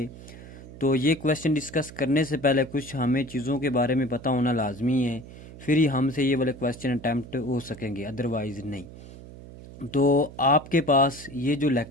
तो ये क्वेश्चन डिस्कस करने से पहले कुछ हमें चीज़ों के बारे में पता होना लाजमी है, फिर ही हमसे ये वाले क्वेश्चन अटैम्प्ट हो सकेंगे, अदरवाइज़ नहीं। तो आपके पास ये जो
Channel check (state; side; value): noise; right; hum, 16 dB below the sound